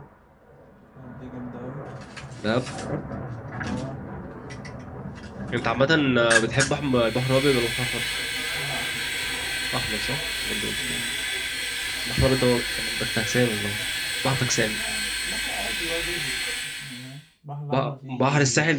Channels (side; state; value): both; identical; correlation 1.00